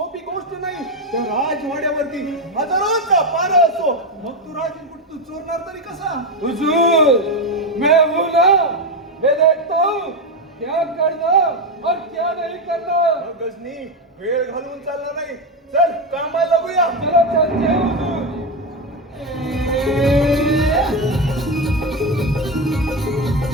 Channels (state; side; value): normal; both; correlation 0.11